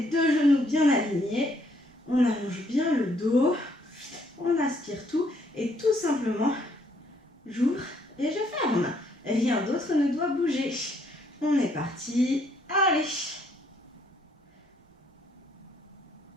deux genoux bien alignés, on allonge bien le dos, on aspire tout et tout simplement, j'ouvre et je ferme. Rien d'autre ne doit bouger. On est parti, allez.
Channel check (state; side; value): normal; both; correlation 0.68